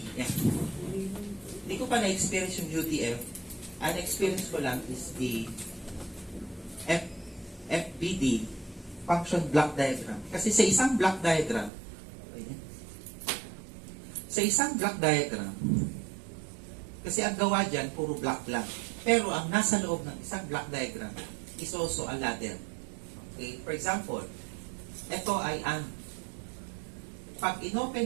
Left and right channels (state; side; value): drops out; left; at 11.7 s